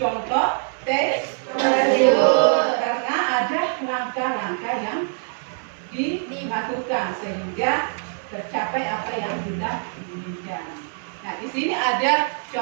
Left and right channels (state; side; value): silent; left; 63 dB below the other